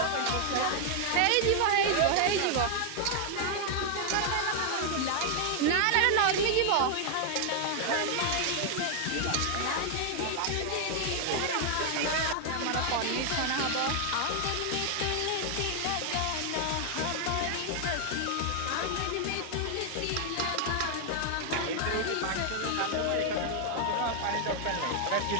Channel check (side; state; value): both; different; correlation 0.00